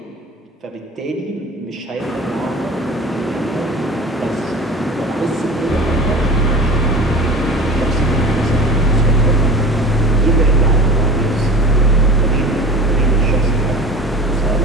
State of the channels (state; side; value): normal; both; correlation 0.38